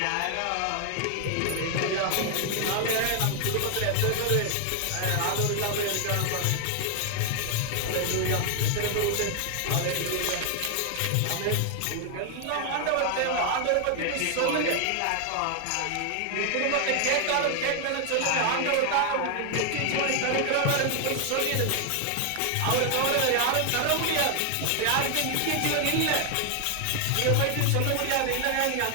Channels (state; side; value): different; both; correlation 0.00